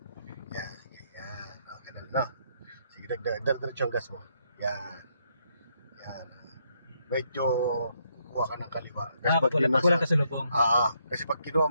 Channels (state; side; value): inverted; both; correlation -0.74